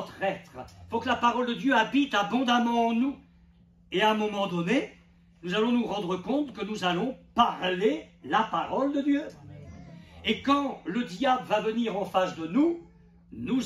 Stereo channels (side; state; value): both; identical; correlation 1.00